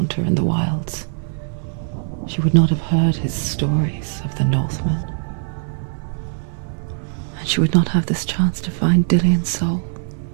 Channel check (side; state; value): left; silent; digital silence